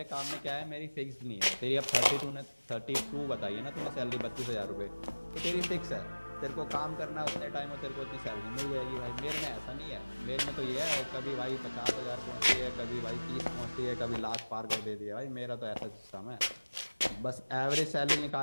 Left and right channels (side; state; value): both; inverted; correlation -1.00